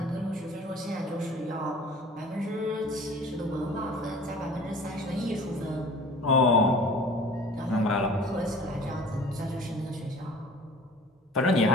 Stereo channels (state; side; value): normal; both; correlation 0.45